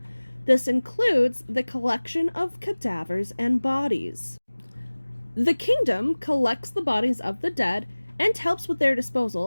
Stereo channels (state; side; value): inverted; both; correlation -1.00